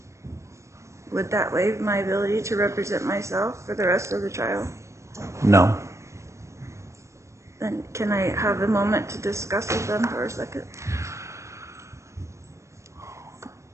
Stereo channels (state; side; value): late; left; 0.14 ms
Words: Would that waive my ability to represent myself for the rest of the trial? No. Then can I have a moment to discuss with them for a second?